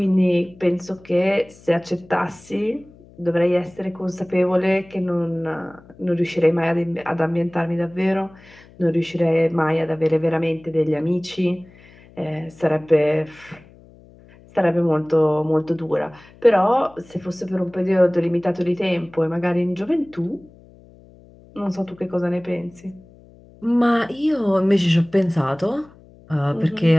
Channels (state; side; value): noise; left; hum, 25 dB below the sound